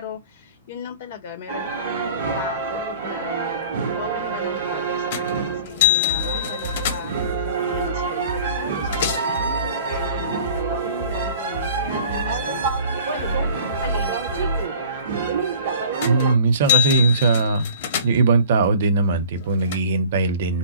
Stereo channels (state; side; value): inverted; both; correlation -0.47